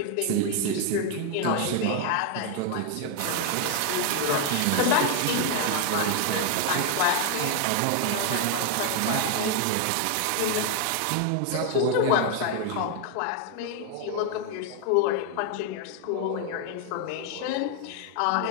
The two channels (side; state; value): both; different; correlation 0.00